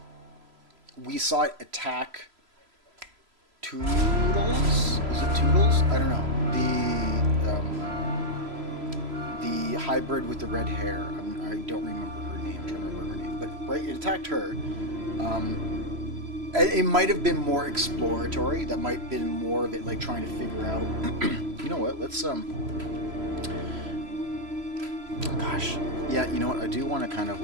we saw it attack Toodles? Is it Toodles? I don't know. The hybrid with the red hair. I don't remember her name. I'm trying to remember her name. But, right, it attacked her. It might have been more exploratory. That might have been more of it, like, trying to figure out, you know what, let's, gosh. Yeah, you know what? I do want to kind of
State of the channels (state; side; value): late; left; 3.0 ms